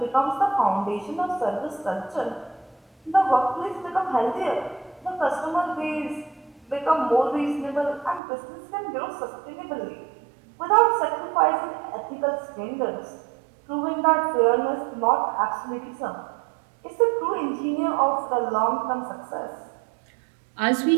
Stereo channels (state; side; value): drops out; left; at 8.2 s